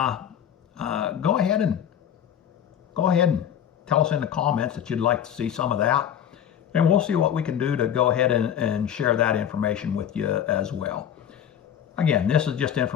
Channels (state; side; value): quieter; right; 9.5 dB